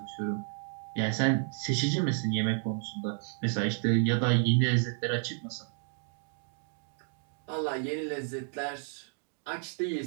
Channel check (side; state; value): left; silent; 57 dB below the other